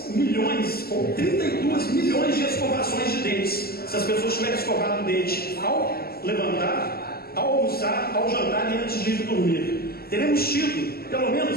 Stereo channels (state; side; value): late; right; 0.45 ms